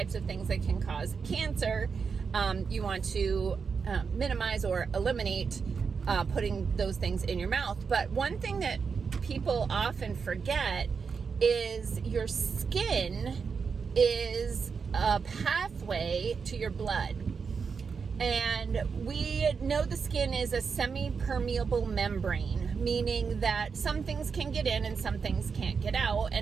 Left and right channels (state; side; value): quieter; left; 5.7 dB